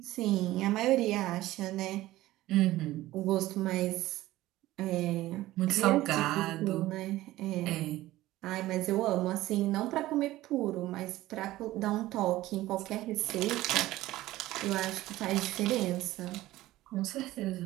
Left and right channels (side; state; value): left; quieter; 16.4 dB